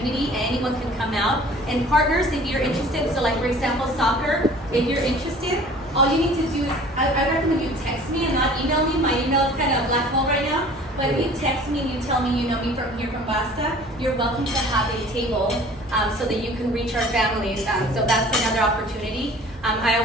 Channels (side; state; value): both; normal; correlation 0.48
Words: Anyone can come out. And partners, if you're interested, so like for example, soccer, if you're interested, all you need to do is, I recommend you text me and not email me. My email is kind of a black hole right now. But if you text me and you tell me you know me from here from BASTA, you're welcome to have a table so that you can reach our families. So that's another opportunity. I